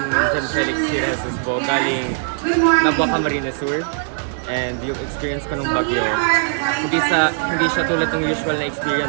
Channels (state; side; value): silent; left; digital silence